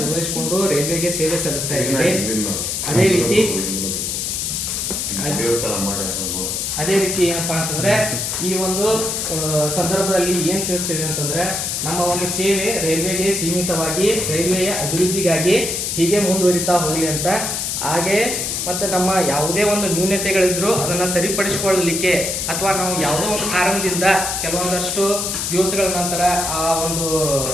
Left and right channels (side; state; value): left; noise; hiss, 2 dB below the sound